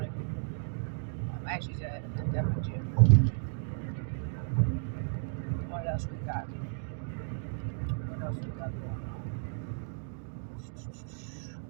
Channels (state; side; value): silent; left; digital silence